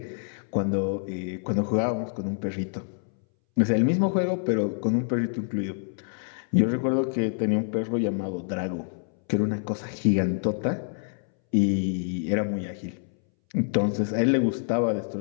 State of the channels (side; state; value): right; silent; 60 dB below the other